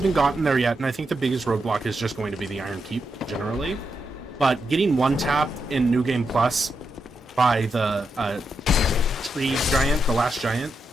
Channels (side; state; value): both; normal; correlation 0.84